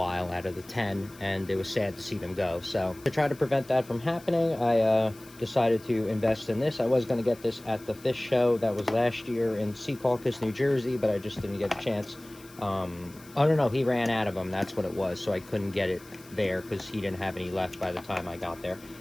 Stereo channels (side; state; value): left; noise; hiss, 23 dB below the sound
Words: out of the 10, and it was sad to see them go. So to try to prevent that from happening, I decided to invest in this. I was going to get this at the fish show that was last year in Secaucus, New Jersey, but I just didn't get a chance. I don't know, he ran out of them, that's what it was, so I couldn't get it there because he didn't have any left by the time I got there.